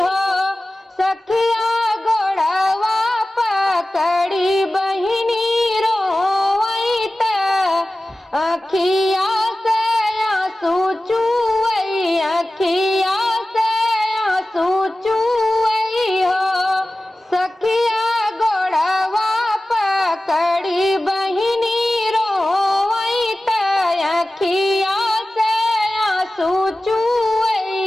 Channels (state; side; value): normal; both; correlation 0.96